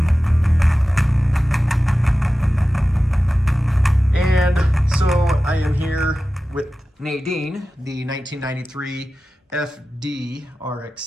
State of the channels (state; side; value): normal; both; correlation 0.95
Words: And so I am here with Nadine, the 1993 FD